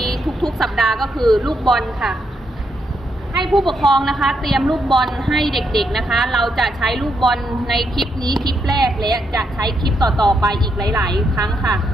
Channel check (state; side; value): normal; both; correlation 0.79